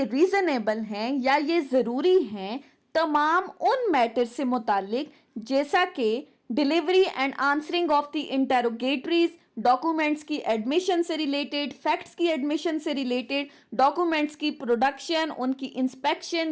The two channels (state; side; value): identical; both; correlation 1.00